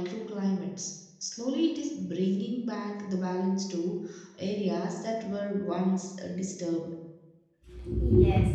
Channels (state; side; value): identical; both; correlation 1.00